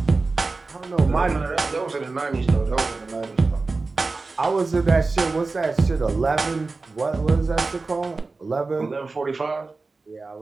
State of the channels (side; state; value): left; quieter; 3.8 dB